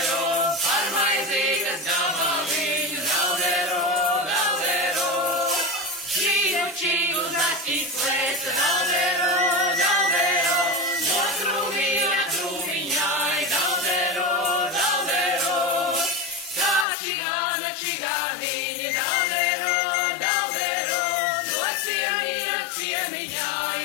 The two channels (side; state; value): right; drops out; at 16.9 s